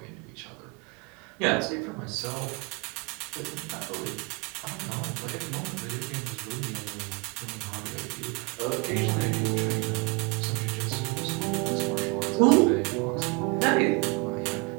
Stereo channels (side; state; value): left; quieter; 28.3 dB